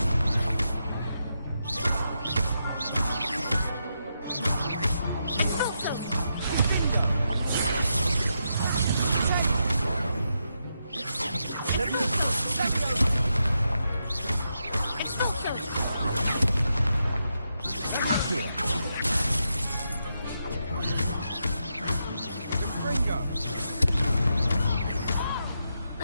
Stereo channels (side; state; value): both; inverted; correlation -0.84